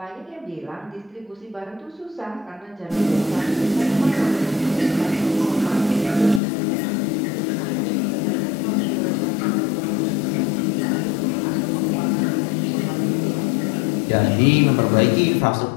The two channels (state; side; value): drops out; right; at 6.4 s